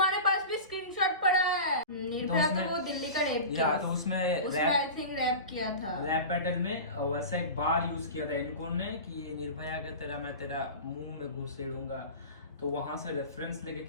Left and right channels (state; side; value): inverted; both; correlation -0.31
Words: पास भी स्क्रीनशॉट पड़ा है? निर्भया तो वो दिल्ली का रैप या तो उसमें आई थिंक रैप किया था, रैप बैटल में वैसे एक बार यूज किया था इनको ने कि निर्भया के तेरा मैं तेरा मुंह में घुसेड़ूंगा, तो वहां से रेफरेंस लेके